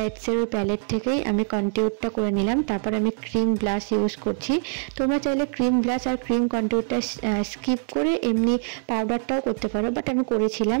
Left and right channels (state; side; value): silent; left; 62 dB below the other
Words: ওই প্যালেট থেকেই আমি কন্টিউরটা করে নিলাম। তারপর আমি ক্রিম ব্লাশ ইউজ করছি। তোমরা চাইলে ক্রিম ব্লাশ আর ক্রিম কন্টিউরটা স্কিপ করে এমনি পাউডারটাও করতে পারো, বাট আমি করেছিলাম।